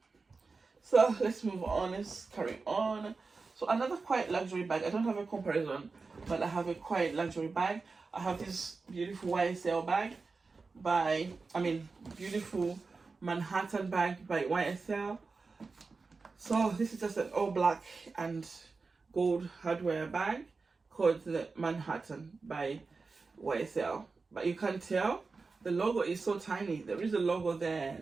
So let's move on, let's carry on. So another quite luxury bag. I don't have a comparison, but I have a quite luxury bag. I have this beautiful YSL bag beautiful Manhattan bag by YSL. So this is just an all black and gold hardware bag called the Manhattan by YSL. But you can't tell, the logo is so tiny. There is a logo there,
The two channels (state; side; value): quieter; left; 4.2 dB